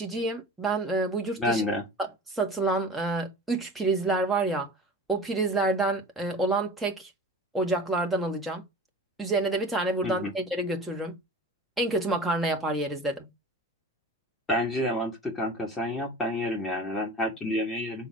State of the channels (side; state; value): both; normal; correlation 0.37